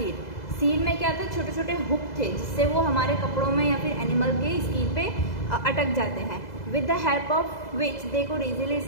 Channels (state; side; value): late; right; 2.0 ms